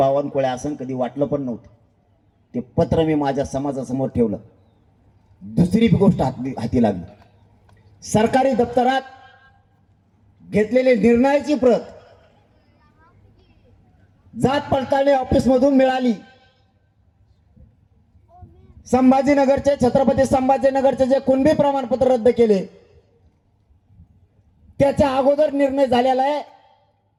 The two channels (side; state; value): both; identical; correlation 1.00